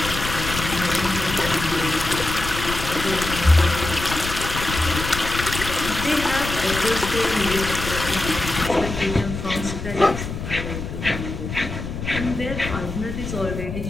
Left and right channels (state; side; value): noise; left; rumble, 7 dB below the sound